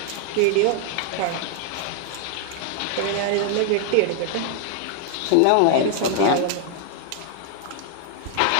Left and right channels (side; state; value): both; different; correlation 0.00